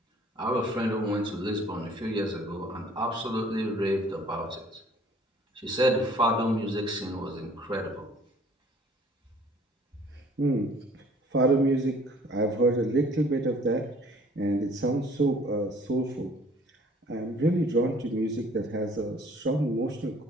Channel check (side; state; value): both; normal; correlation 0.55